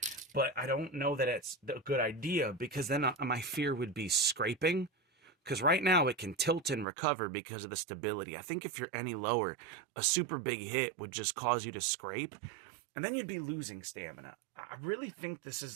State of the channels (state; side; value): drops out; left; at 6.9 s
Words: but I don't know that it's a good idea, because then my fear would be scraping. Because right now it can tilt and recover because of the stability. I think if you're any lower, a super big hit would just cause you to scrape, and then you'd be losing stamina. I really think this